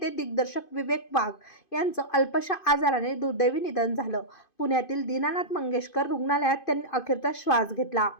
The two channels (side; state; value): right; late; 2.5 ms